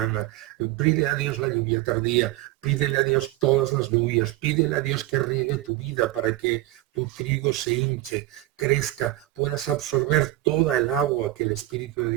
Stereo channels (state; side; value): quieter; left; 16.9 dB